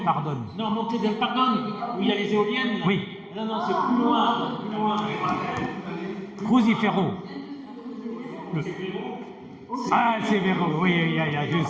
Pardon. Non, Monte del Pardon, où il y a les éoliennes. Oui. Non, c'est plus loin. Crucifero. Ah, El Severo, oui,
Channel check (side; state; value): both; identical; correlation 1.00